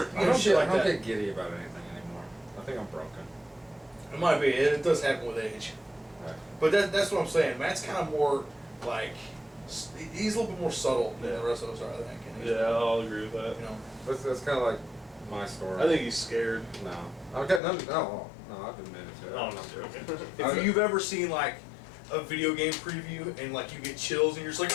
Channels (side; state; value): right; drops out; at 17.6 s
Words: I don't, shit like I don't that. get giddy about anything anymore. I think I'm broken. It might be. It does happen with age. Right. But that's what I'm saying. Matt's kind of more like he's a little bit more subtle than the rest of us are, I think. And he's, Yeah, I'll agree with that. You know. That's kind of like my story. I think he's scared. No. Okay, no, I've admitted to it. No, I'm not joking. If you've ever seen like a video game preview and like you get chills and you're just like